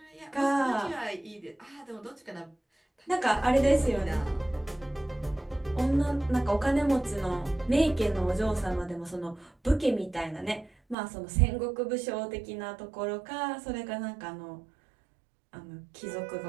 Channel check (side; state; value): left; drops out; at 11.0 s